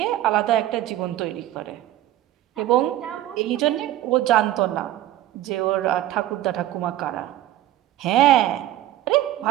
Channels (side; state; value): left; quieter; 14.0 dB